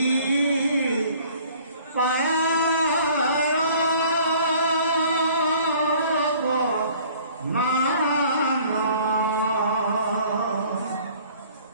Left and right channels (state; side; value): inverted; both; correlation -0.53